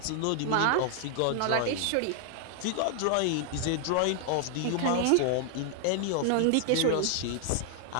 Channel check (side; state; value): both; different; correlation 0.00